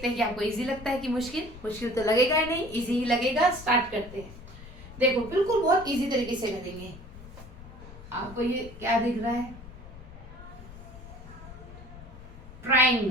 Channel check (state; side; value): noise; left; rumble, 16 dB below the sound